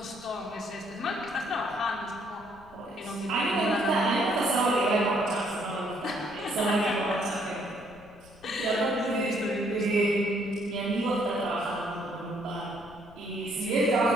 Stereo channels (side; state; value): left; noise; rumble, 24 dB below the sound